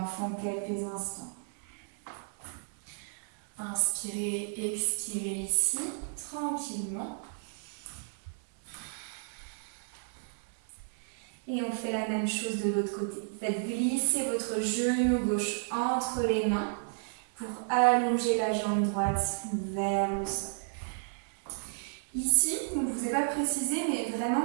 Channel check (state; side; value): silent; left; digital silence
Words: quelques instants. Inspirez, expirez ici, tranquillement. Et on fait la même chose de l'autre côté. Faites glisser votre genou gauche entre les mains pour allonger la jambe droite vers le sol. Ici, je ne vous ai pas précisé, mais vraiment,